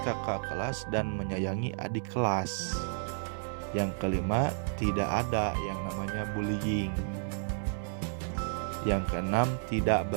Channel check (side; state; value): left; silent; digital silence